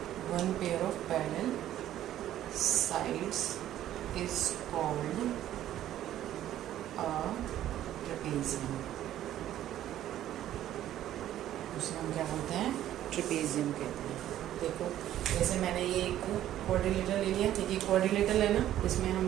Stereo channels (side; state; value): left; quieter; 12.4 dB